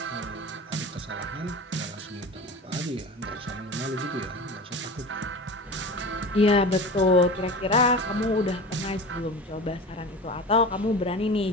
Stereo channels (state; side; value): normal; both; correlation 0.33